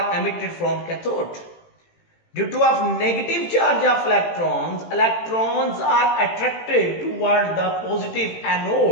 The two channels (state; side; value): late; right; 18 ms